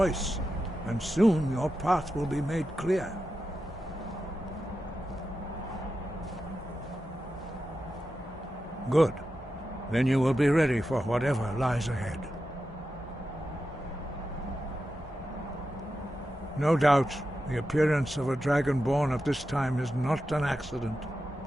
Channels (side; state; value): both; normal; correlation 0.90